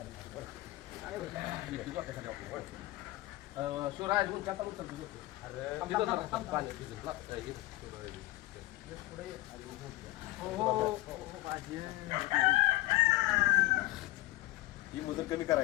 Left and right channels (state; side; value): quieter; right; 18.5 dB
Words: शिवराज ही मुदत कमी